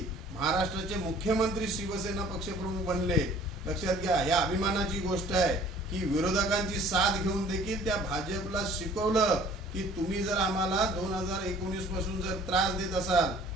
महाराष्ट्राचे मुख्यमंत्री शिवसेना पक्षप्रमुख बनले. लक्षात घ्या, या अभिमानाची गोष्ट आहे की विरोधकांची साथ घेऊन देखील त्या भाजपला शिकवलं की तुम्ही जर आम्हाला 2019 पासून जर त्रास देत असाल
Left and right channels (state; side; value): normal; both; correlation 0.52